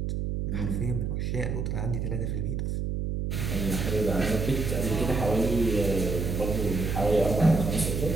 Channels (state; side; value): noise; right; hum, 1 dB below the sound